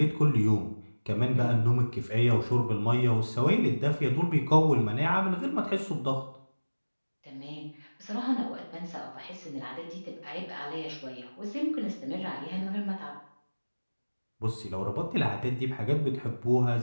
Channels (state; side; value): inverted; both; correlation -1.00